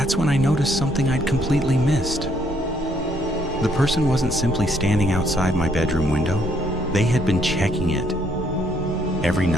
when I noticed something I'd completely missed. The person wasn't simply standing outside my bedroom window. They had been checking it. Every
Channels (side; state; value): both; normal; correlation 0.69